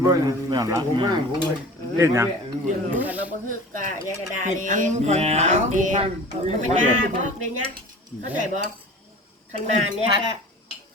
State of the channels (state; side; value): normal; both; correlation 0.41